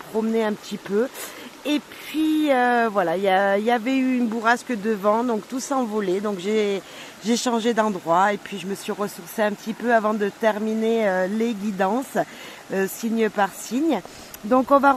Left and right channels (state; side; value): identical; both; correlation 1.00